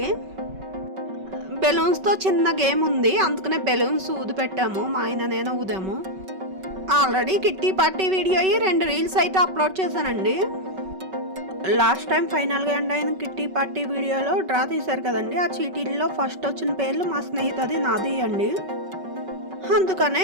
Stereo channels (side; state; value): left; late; 5.3 ms